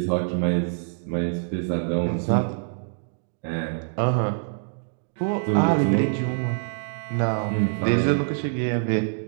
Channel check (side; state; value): left; silent; digital silence